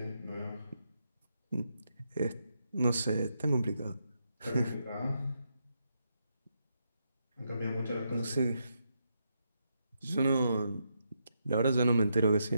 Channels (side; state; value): both; inverted; correlation -0.81